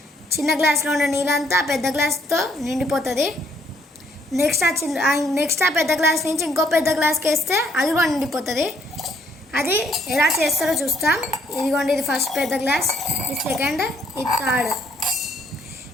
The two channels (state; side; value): normal; both; correlation 0.69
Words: చిన్న గ్లాస్లో ఉన్న నీళ్ళంతా పెద్ద గ్లాస్తో నిండిపోతుంది. నెక్స్ట్ ఆ పెద్ద గ్లాస్ నుంచి ఇంకో పెద్ద గ్లాస్కి వేస్తే అది కూడా నిండిపోతుంది. అది ఎలా చేస్తారో చూస్తాం. ఇదిగోండి, ఇది ఫస్ట్ పెద్ద గ్లాస్, ఇది సెకండ్, ఇది థర్డ్.